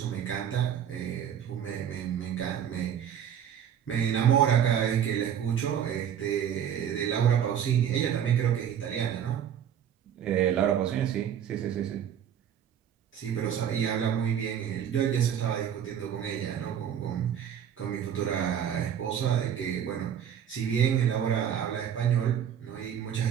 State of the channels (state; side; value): quieter; left; 9.1 dB